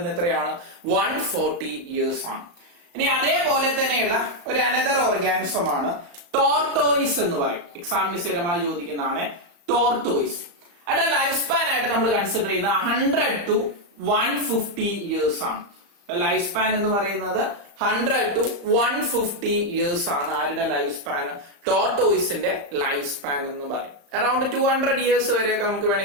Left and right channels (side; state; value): left; late; 35 ms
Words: എത്രയാണ്? 140 ഇയേഴ്സ് ആണ്. ഇനി അതേപോലെ തന്നെയുള്ള ഒരു അനദർ ഓർഗാനിസം ആണ് ടോർട്ടോയിസ് എന്ന് പറയും. എക്സാമിന് സ്ഥിരമായി ചോദിക്കുന്നതാണ് ടോർട്ടോയിസ്. അതിന്റെ ലൈഫ് സ്പാൻ ആയിട്ട് നമ്മൾ കൺസിഡർ ചെയ്യുന്ന 100 to 150 ഇയേഴ്സ് ആണ്. ലൈഫ് സ്പാൻ എന്ന് പറയുന്നത് 100 to 150 ഇയേഴ്സ് ആണ്. ആരുടെ ലൈഫ് സ്പാൻ? ടോർട്ടോയിസിന്റെ ലൈഫ് സ്പാൻ എന്ന് പറയും. അറൌണ്ട് 200 ഇയേഴ്സ് വരെയൊക്കെ നമുക്ക്